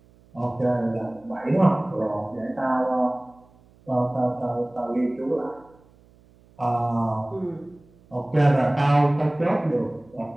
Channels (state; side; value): noise; right; hum, 29 dB below the sound